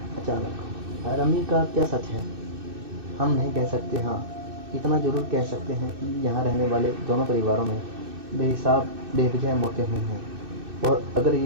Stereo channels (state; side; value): late; left; 2.6 ms